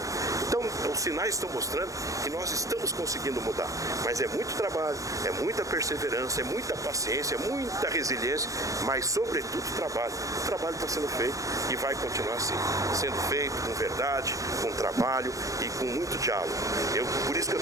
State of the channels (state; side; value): late; left; 0.16 ms